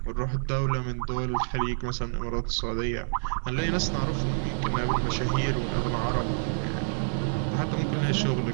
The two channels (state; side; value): silent; left; 59 dB below the other